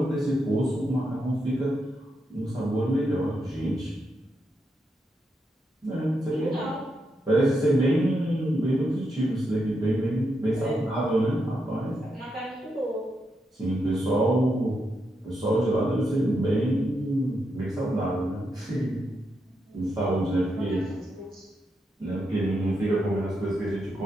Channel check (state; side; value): normal; both; correlation 0.83